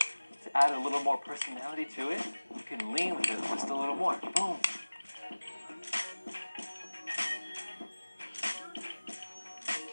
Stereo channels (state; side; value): inverted; both; correlation -1.00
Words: To add a little more personality to it, you can lean with it just a little more. Boom.